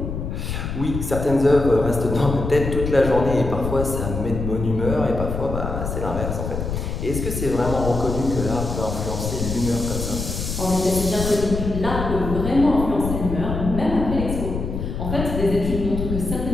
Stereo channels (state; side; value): noise; left; rumble, 4 dB below the sound